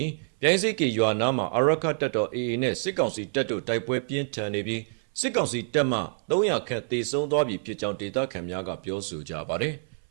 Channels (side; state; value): left; silent; 59 dB below the other